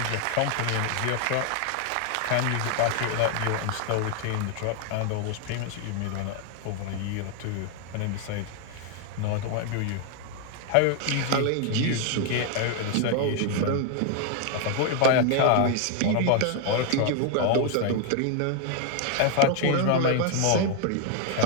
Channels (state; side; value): different; both; correlation 0.00